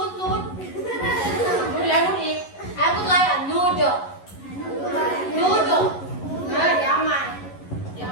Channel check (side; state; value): right; late; 11 ms